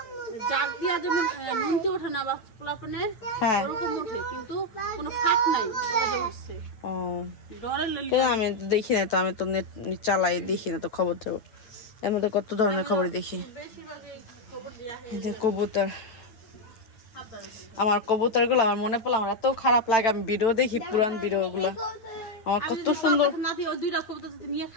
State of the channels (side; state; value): right; late; 9.1 ms